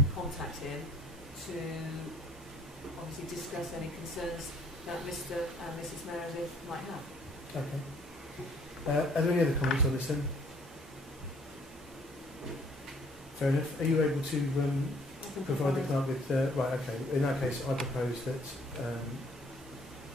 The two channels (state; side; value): normal; both; correlation 0.59